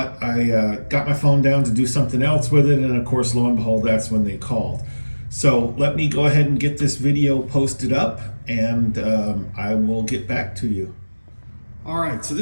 I got my phone down to do something else with it. And of course, lo and behold, that's when they called. So let me go ahead and get this video posted up, and I will get back to you. All right, so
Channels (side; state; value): both; inverted; correlation -1.00